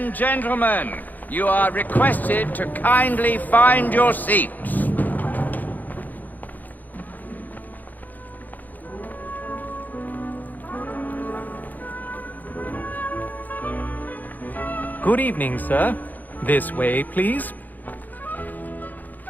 gentlemen, you are requested to kindly find your seats. Good evening, sir. This way, please.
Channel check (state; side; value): late; right; 0.084 ms